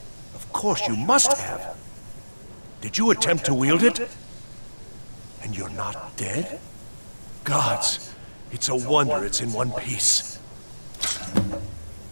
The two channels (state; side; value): inverted; both; correlation -1.00